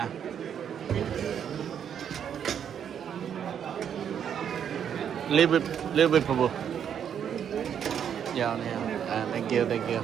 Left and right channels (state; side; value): quieter; left; 8.5 dB